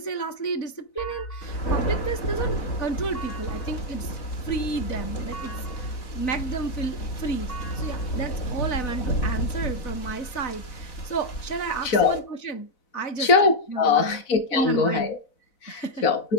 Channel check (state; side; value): late; right; 4.0 ms